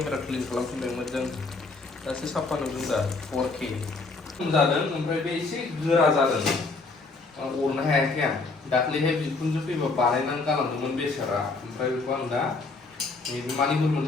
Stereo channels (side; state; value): right; quieter; 3.8 dB